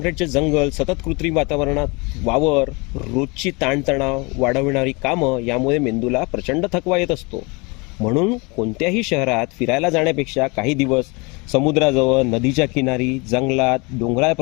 जंगल, सतत कृत्रिम वातावरणात वावर, रोजची ताणतणाव वाढविणारी कामं यामुळे मेंदूला प्रचंड थकवा येत असतो. म्हणून कोणत्याही शहरात फिरायला जाण्यापेक्षा काही दिवस समुद्राजवळ, नदीच्या किनारी, जंगलात, डोंगराळ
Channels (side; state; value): right; quieter; 28.3 dB